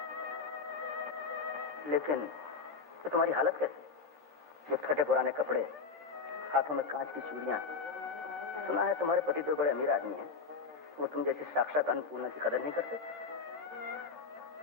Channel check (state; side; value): quieter; right; 4.9 dB